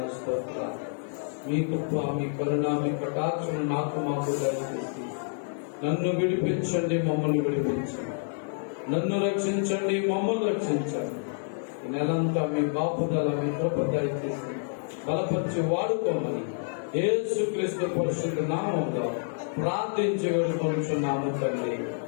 స్తోత్రాలు. మీ కృప, మీ కరుణ, మీ కటాక్షను నాకు మాకు దయచేసి నన్ను విడిపించండి, మమ్మల్ని విడిపించండి. నన్ను రక్షించండి, మమ్మల్ని రక్షించండి. ఈ నెలంతా మీ బాపుదల, మీ కృప దయచేసి బలపరిచి వాడుకోమని యేసుక్రీస్తు పరిశుద్ధ నామములో ప్రార్థించి వేడుకొనుచున్నాము తండ్రి.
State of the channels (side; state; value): right; silent; digital silence